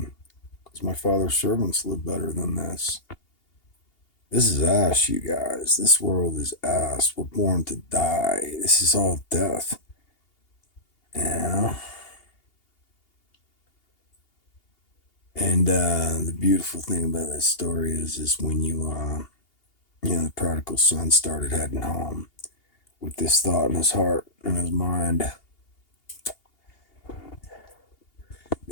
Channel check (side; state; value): right; late; 2.8 ms